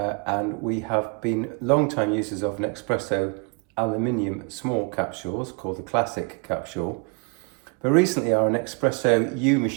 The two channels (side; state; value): left; quieter; 33.5 dB